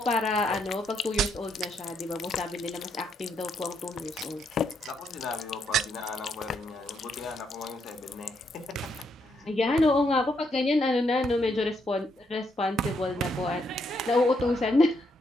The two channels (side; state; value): both; normal; correlation 0.76